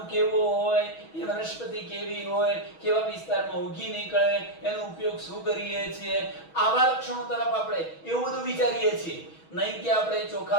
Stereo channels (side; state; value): right; late; 6.2 ms